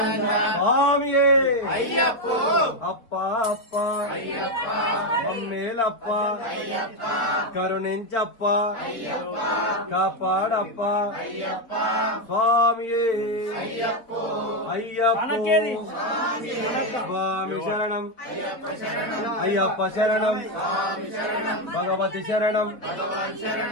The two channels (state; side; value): late; right; 4.2 ms